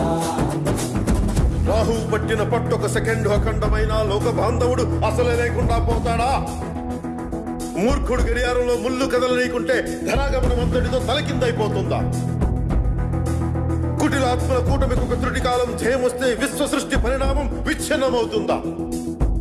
రాహు పట్టిన పట్టొక సెకండ్ అఖండమైన లోక బాంధవుడు అసలే లేకుండా పోతాడా? మూర్ఖుడు గడియారంలో ముళ్ళు కదలనీకుంటే ధరాగమనం అంతటితో తలకిందైపోతుందా? కుటిలాత్మల కూటమికి ఒక త్రుటి కాలం జయమొస్తే విశ్వ సృష్టి పరిణామం విచ్ఛిన్నమవుతుందా?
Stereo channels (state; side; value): identical; both; correlation 1.00